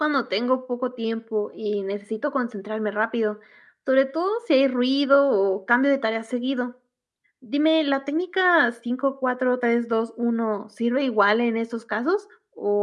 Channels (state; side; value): identical; both; correlation 1.00